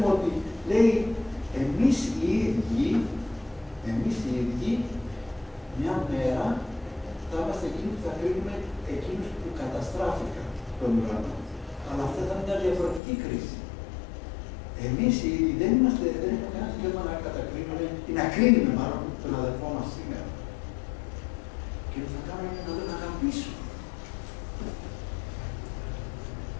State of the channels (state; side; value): drops out; right; at 13.0 s